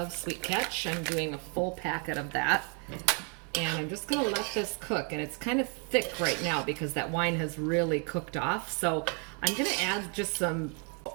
sweet catch. I'm doing a full packet of that. And I'm just going to let this cook. And it's kind of thick right now because that wine has really cooked off. So I'm going to add just a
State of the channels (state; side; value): quieter; left; 38.0 dB